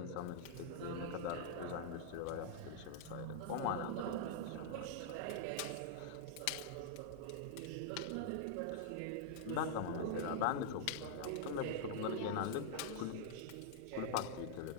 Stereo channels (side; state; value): both; different; correlation -0.01